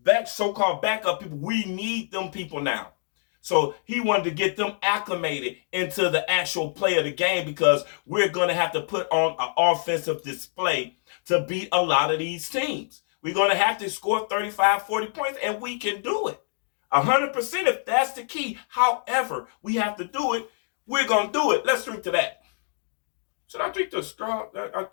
so-called backup people, we need them people now. So he wanted to get them acclimated into the actual play of the game because we're going to have to put on an offensive display to beat a lot of these teams. We're going to have to score 35, 40 points, and we can do it. 100% if that's the key. However, we have to do it. We're going to do it. Let's drink to that. Should I drink the straw? I'll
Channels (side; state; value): right; silent; digital silence